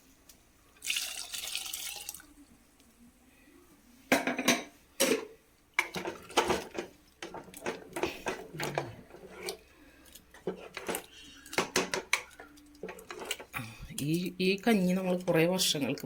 ഈ കഞ്ഞി നമ്മൾ കുറേ വർഷങ്ങൾക്ക്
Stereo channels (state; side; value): identical; both; correlation 1.00